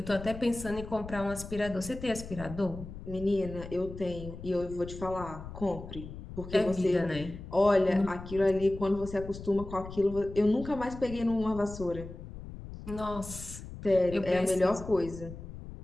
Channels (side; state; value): left; noise; rumble, 12 dB below the sound